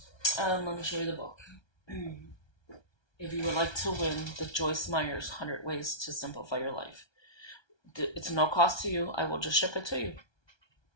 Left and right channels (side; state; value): right; late; 1.3 ms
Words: let me show you the book. If you would like to win the Joyce Meyer's 100 Ways to Simplify Your Life. It's no cost to you. I will just ship it to you.